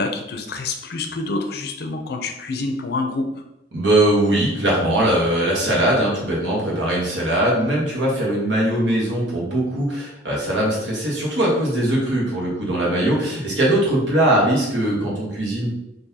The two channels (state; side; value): normal; both; correlation 0.48